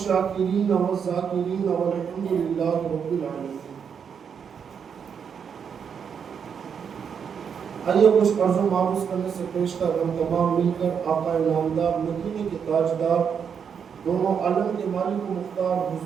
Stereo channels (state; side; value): quieter; left; 7.1 dB